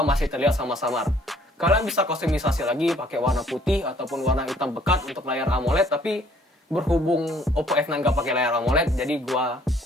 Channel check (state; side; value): normal; both; correlation 0.60